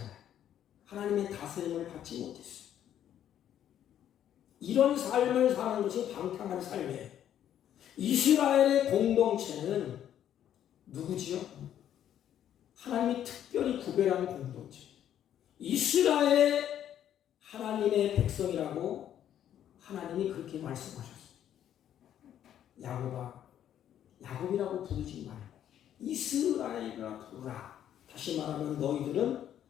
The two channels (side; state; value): right; quieter; 10.5 dB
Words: 하나님의 다스림을 받지 못했어요. 이런 삶을 사는 것이 방탕한 삶이에요. 이스라엘의 공동체는 누구지요? 하나님이 특별히 구별한 공동체. 이스라엘의 하나님의 백성이라고 하나님이 그렇게 말씀하셨어요. 야곱아, 야곱이라고 부르지 말고 이스라엘이라 부르라. 다시 말하면 너희들은